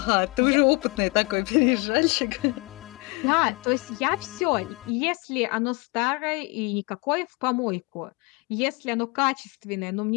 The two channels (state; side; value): quieter; right; 28.0 dB